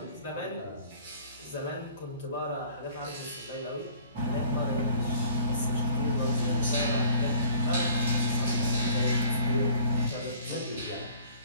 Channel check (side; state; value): both; inverted; correlation -0.53